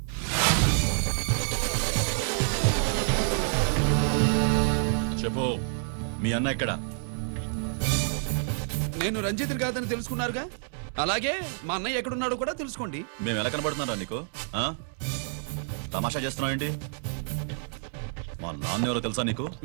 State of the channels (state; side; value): silent; left; digital silence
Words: చెప్పు, మీ అన్న ఎక్కడ? నేను రంజిత్ కాదని తెలుసుకున్నారుగా, అలాగే మా అన్నయ్య ఎక్కడున్నాడో కూడా తెలుసుకోండి. మేము ఎలా కనబడుతున్నారా నీకు? తమాషా చేస్తున్నావు ఏంటి? మా నాన్న ఎవరో తెలుసా నీకు?